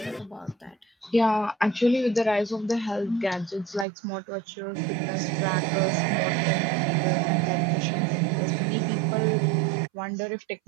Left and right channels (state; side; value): drops out; left; at 3.9 s